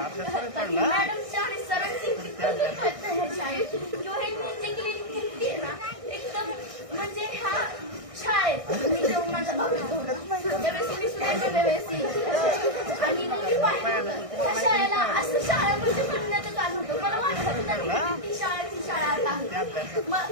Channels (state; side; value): late; left; 1.6 ms